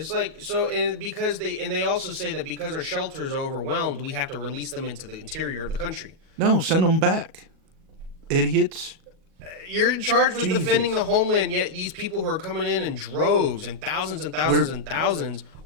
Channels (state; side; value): late; left; 37 ms